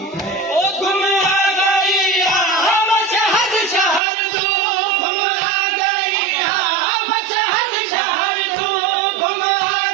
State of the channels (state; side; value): drops out; left; at 4.0 s